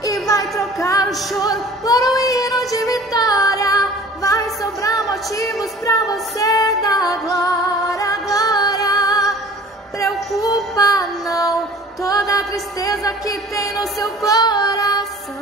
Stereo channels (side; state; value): both; normal; correlation 0.46